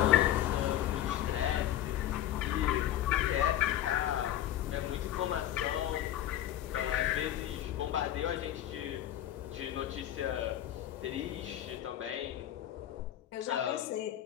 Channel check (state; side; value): quieter; right; 12.3 dB